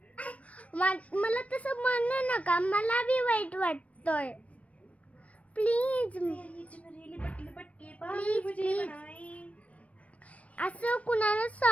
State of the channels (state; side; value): late; right; 0.065 ms